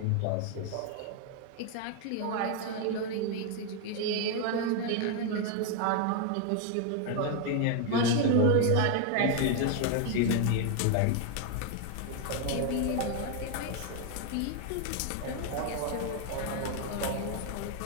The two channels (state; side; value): different; both; correlation 0.01